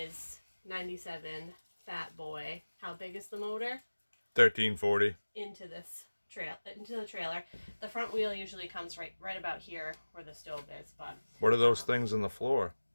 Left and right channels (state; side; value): inverted; both; correlation -1.00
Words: 97 Fat Boy. How big is the motor? 1340. Into the trailer. The front wheel usually comes right about here where the stove is. But what are those things on the floor?